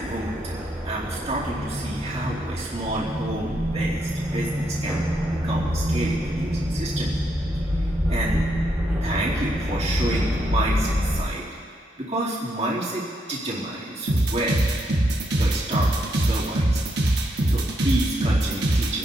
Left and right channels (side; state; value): both; normal; correlation 0.78